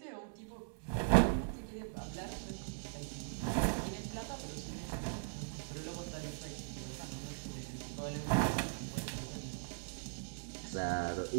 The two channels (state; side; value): silent; left; digital silence